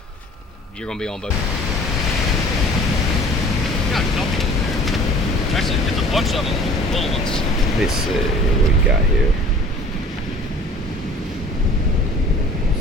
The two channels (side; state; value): both; normal; correlation 0.48